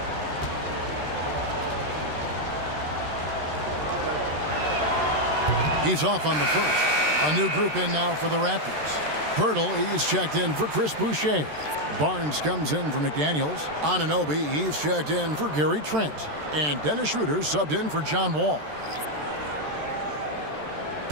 He's off on the first. A new group in now for the Raptors. Pirtle, he's checked in for Chris Boucher. Barnes comes in for McDaniels. Anunoby, he's checked in for Gary Trent. And Dennis Schroeder subbed in for John Wall.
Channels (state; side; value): late; left; 13 ms